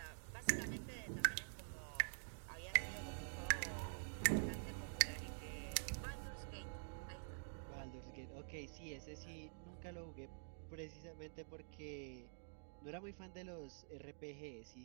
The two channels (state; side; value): silent; left; digital silence